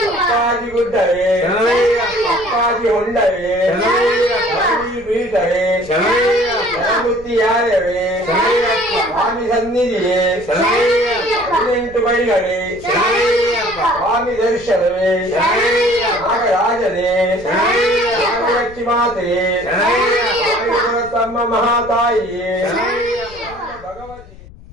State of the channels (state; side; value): noise; left; rumble, 20 dB below the sound